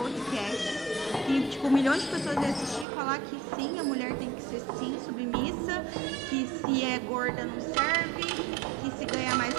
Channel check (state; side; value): drops out; left; at 2.9 s